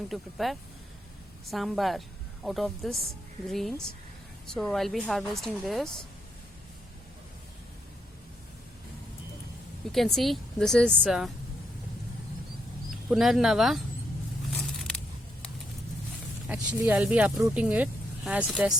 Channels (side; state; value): both; normal; correlation 0.77